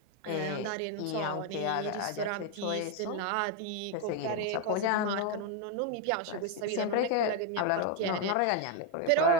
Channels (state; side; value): different; both; correlation 0.01